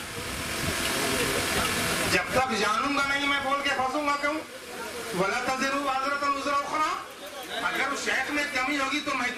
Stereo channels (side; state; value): both; identical; correlation 1.00